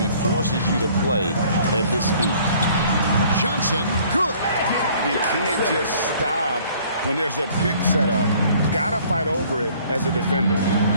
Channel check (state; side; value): inverted; both; correlation -0.56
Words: forces you to play at his speed. Johnson, good. You can't just stop when there's a pick set up. Gotta fight over it as a defender.